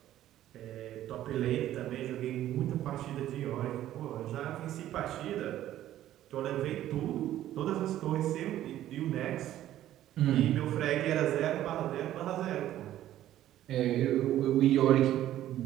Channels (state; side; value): quieter; left; 12.9 dB